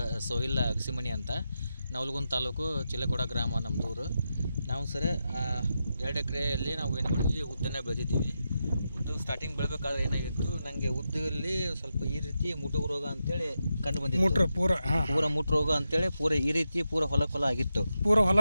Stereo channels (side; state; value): both; inverted; correlation -0.88